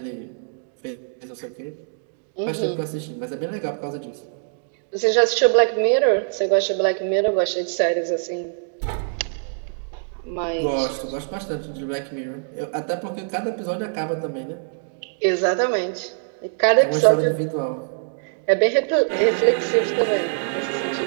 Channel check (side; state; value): left; silent; digital silence